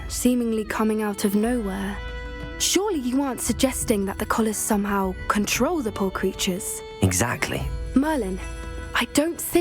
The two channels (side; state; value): both; identical; correlation 1.00